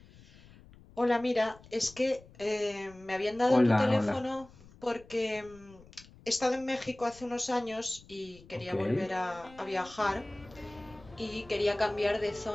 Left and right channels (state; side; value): noise; left; rumble, 23 dB below the sound